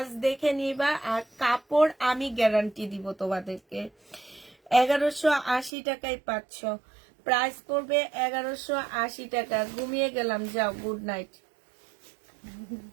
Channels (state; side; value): drops out; left; at 5.7 s